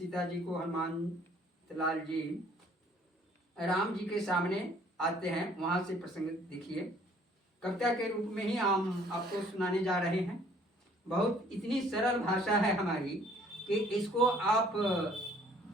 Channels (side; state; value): both; normal; correlation 0.58